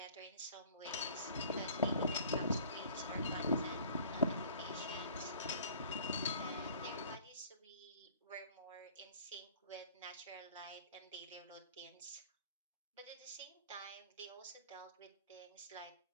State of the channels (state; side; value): inverted; both; correlation -0.51